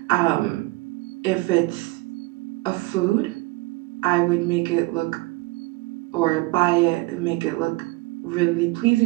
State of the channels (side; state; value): left; quieter; 22.2 dB